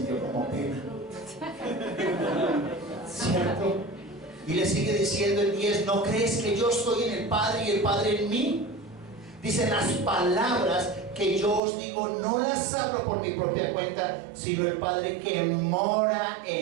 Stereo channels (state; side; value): drops out; left; at 11.6 s